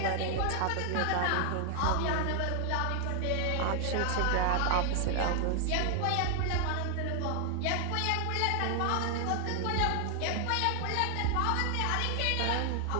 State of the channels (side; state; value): both; different; correlation 0.00